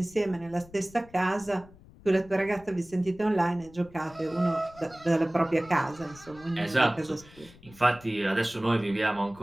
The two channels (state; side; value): noise; left; rumble, 23 dB below the sound